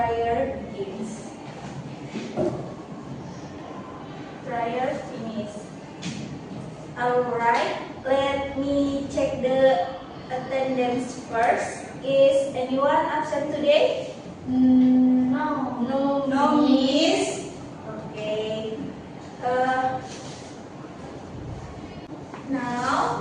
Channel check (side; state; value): both; identical; correlation 1.00